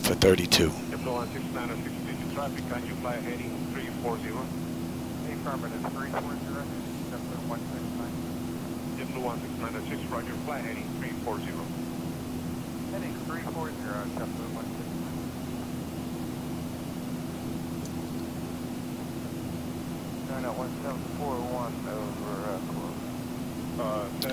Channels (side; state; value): both; identical; correlation 1.00